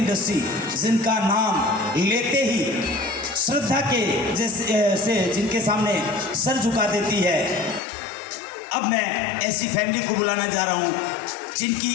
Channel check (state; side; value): drops out; right; at 7.8 s